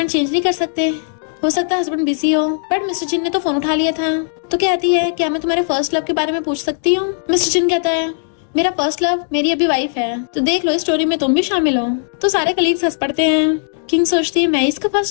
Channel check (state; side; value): silent; right; digital silence